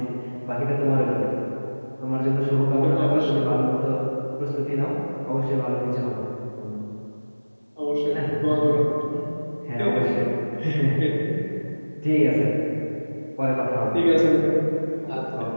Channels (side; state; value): both; inverted; correlation -1.00